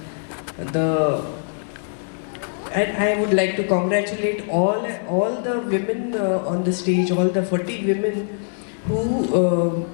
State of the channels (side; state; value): right; silent; digital silence